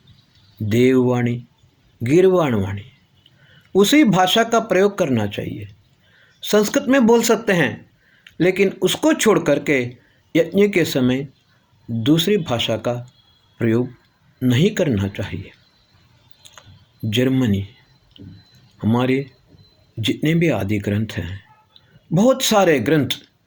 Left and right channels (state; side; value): identical; both; correlation 1.00